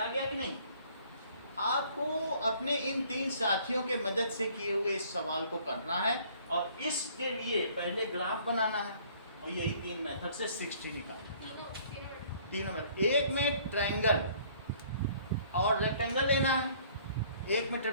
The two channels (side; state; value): both; inverted; correlation -0.58